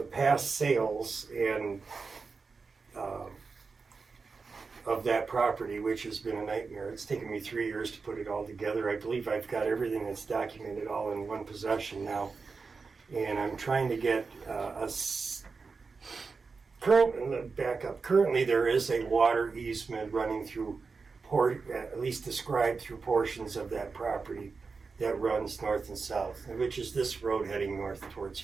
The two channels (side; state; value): left; quieter; 4.7 dB